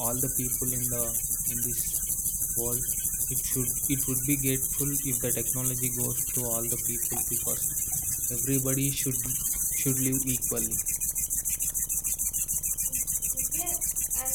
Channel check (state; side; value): identical; both; correlation 1.00